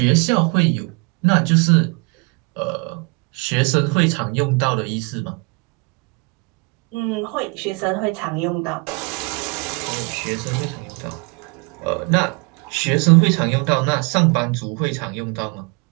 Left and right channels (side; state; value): left; quieter; 30.6 dB